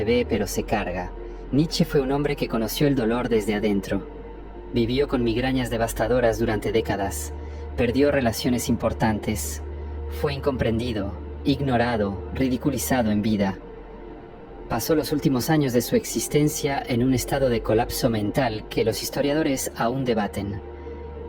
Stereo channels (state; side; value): identical; both; correlation 1.00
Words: ve pero se carga. Nietzsche fue un hombre que conoció el dolor desde adentro. Vivió con migrañas devastadoras durante décadas. Perdió relaciones importantes. Fue incomprendido, ignorado, ridiculizado en vida. Pasó los últimos años de su existencia en un estado de colapso mental que los historiadores aún debaten.